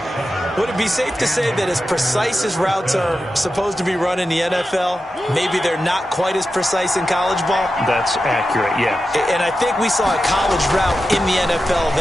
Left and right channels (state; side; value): normal; both; correlation 0.91